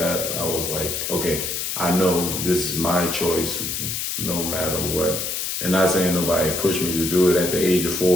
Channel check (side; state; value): left; noise; hiss, 3 dB below the sound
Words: I was like, okay, I know this is my choice no matter what. And not saying nobody pushed me to do it at the age of